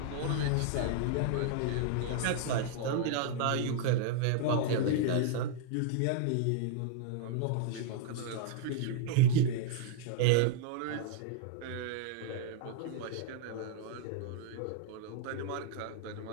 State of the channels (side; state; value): both; different; correlation -0.01